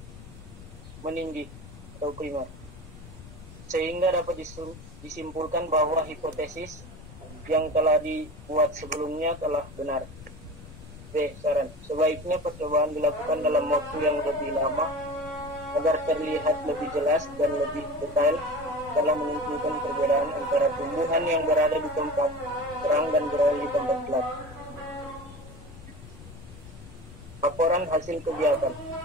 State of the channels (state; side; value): noise; left; rumble, 17 dB below the sound